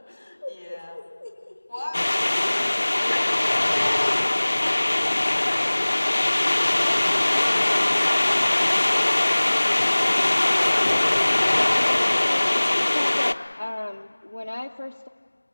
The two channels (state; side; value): inverted; both; correlation -1.00